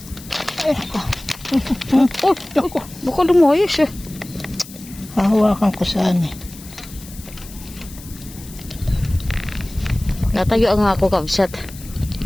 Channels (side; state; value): left; noise; hiss, 18 dB below the sound